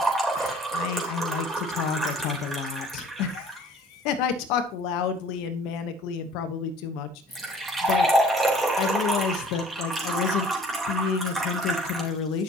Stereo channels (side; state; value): both; normal; correlation 0.51